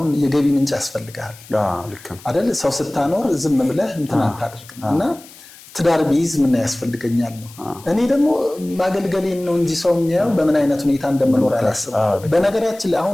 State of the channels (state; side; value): noise; left; hiss, 21 dB below the sound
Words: የገቢ ምንጭ ያስፈልጋል አይደል? ሰው ስታኖር ዝም ብለህ እንትን አታደርግም እና ትዳር ቢይዝ ምን ያስፈልገኛል ነው። እኔ ደግሞ ማገልገሌን ነው እንጂ ሰው የሚያየው በምን አይነት ሁኔታ እንደምኖር አላስብም። በነገራችን ላይ